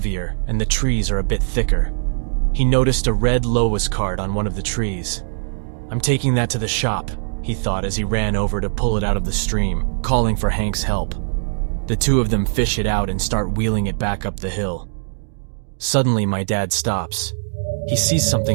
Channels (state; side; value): silent; left; digital silence